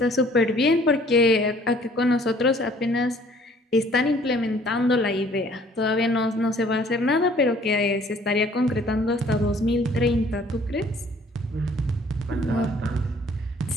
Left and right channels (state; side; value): normal; both; correlation 0.57